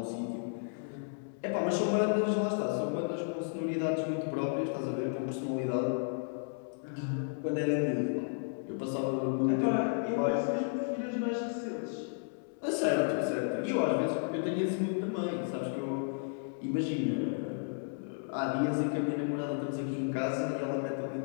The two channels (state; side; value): silent; right; digital silence